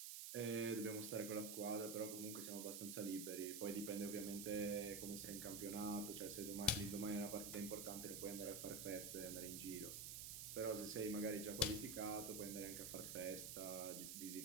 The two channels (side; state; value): right; noise; hiss, 5 dB below the sound